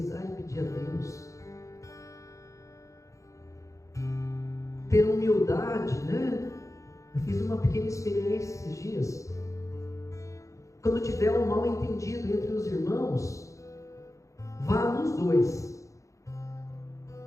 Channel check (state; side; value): late; right; 0.15 ms